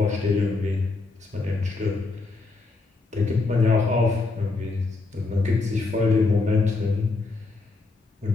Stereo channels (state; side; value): quieter; right; 3.7 dB